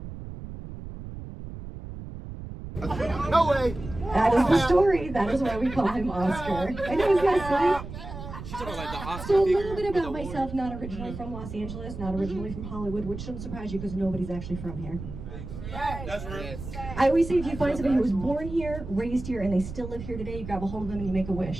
missing. No way! That is the story. That is why we call him Oscar. I know he's got a So a little bit about myself, not originally from Los Angeles, not originally from Hollywood, which shouldn't surprise you because nobody's actually from here. That's right. I always say if you find somebody who was born here, raised here, and they still live here today, you grab a hold of them and you make a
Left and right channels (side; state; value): right; noise; rumble, 10 dB below the sound